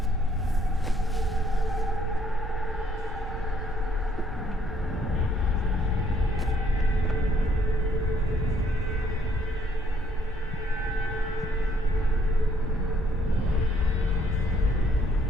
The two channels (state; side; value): normal; both; correlation 0.67